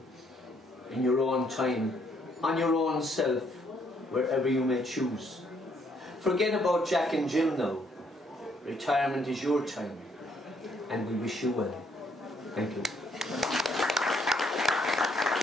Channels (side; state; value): both; normal; correlation 0.69